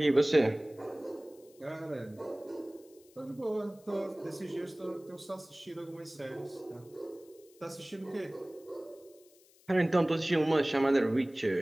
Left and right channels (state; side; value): noise; left; hiss, 28 dB below the sound